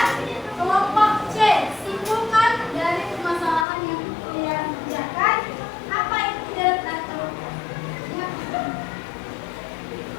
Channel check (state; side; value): drops out; right; at 3.7 s